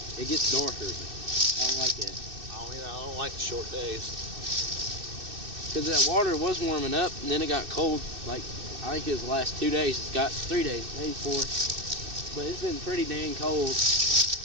darker. I don't like that. I don't like the short days. Because that water was warming up and then it got cold. Like, I think it was the last 2 days. It's got 3 days, maybe 4. But it's been pretty dang cold.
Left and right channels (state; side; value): late; left; 2.6 ms